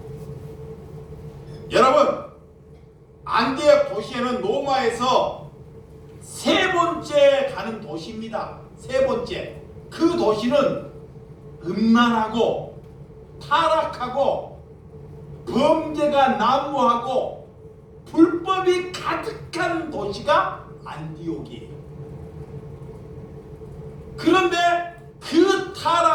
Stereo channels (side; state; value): both; identical; correlation 1.00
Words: 여러분, 안디옥 도시에는 로마에서 세 번째 가는 도시입니다. 세 번째. 그 도시는 음란하고 타락하고 범죄가 난무하고 불법이 가득한 도시가 안디옥이에요. 그런데 그